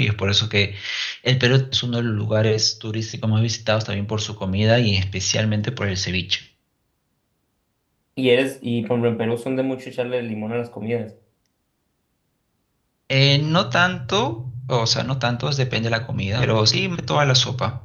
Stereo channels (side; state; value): both; identical; correlation 1.00